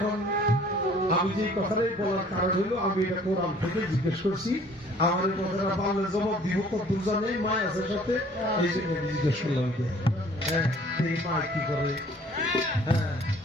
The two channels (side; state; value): both; normal; correlation 0.54